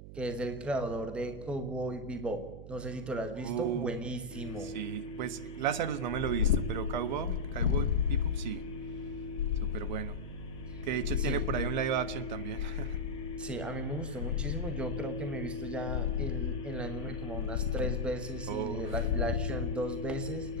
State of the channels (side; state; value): right; noise; hum, 13 dB below the sound